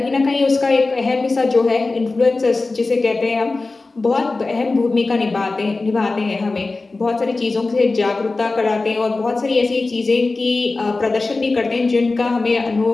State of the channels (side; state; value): right; quieter; 3.5 dB